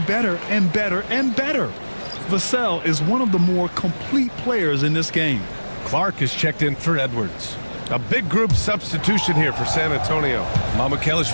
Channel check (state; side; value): inverted; both; correlation -1.00